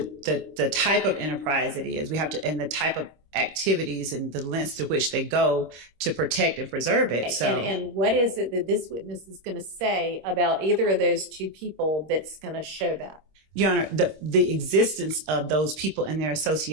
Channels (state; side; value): late; left; 26 ms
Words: type of enterprise it is. We have to, and the type of activities and the lengths to which they go to protect and preserve it. So, and what is it that this witness is going to say about either of those two people that's going to show that? Your Honor, the existence of those people and their